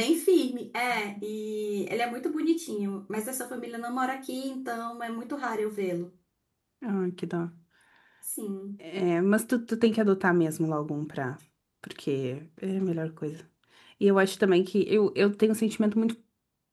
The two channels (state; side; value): identical; both; correlation 1.00